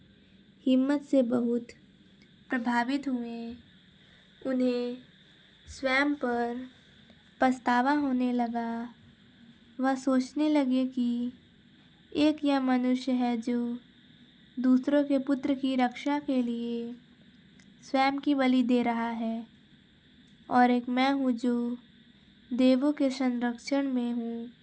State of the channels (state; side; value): identical; both; correlation 1.00